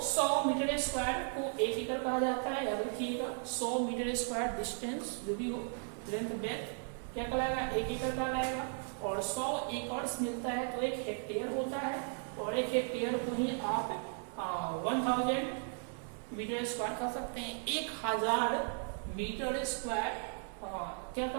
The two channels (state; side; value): silent; left; 54 dB below the other